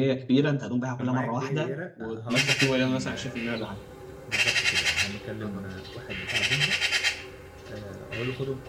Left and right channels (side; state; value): both; identical; correlation 1.00